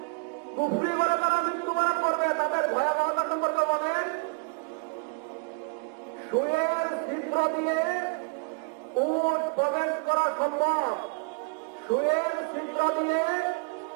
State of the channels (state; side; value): quieter; left; 32.0 dB